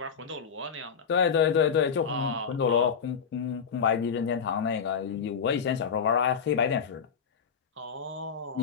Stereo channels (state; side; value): quieter; right; 6.7 dB